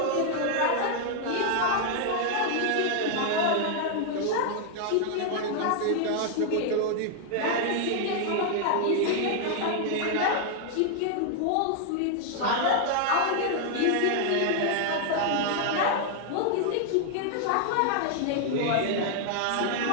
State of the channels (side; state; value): both; different; correlation 0.00